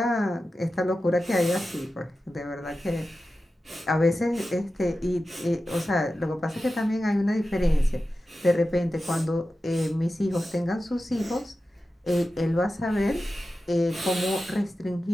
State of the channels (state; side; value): normal; both; correlation 0.93